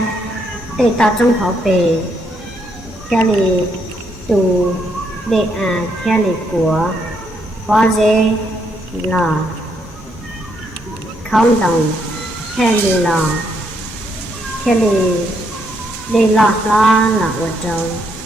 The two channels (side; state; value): both; normal; correlation 0.75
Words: để tàu trong họ về kia là tù để kia là của có dễ là không đồng kia là để lọt lo là ở trong